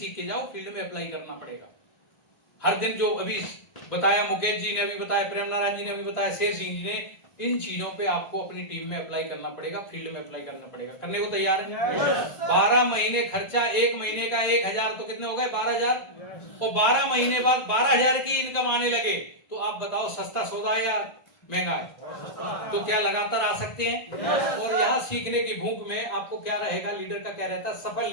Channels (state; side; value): late; right; 1.9 ms